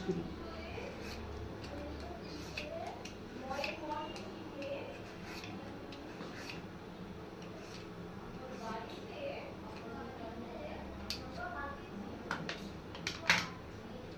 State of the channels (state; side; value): noise; left; hiss, 29 dB below the sound